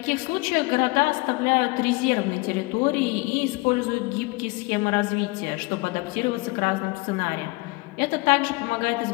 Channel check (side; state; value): right; quieter; 25.0 dB